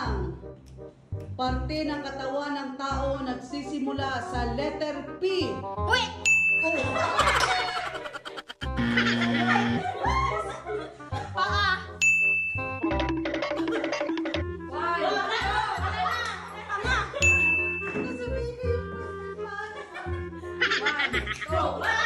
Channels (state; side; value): identical; both; correlation 1.00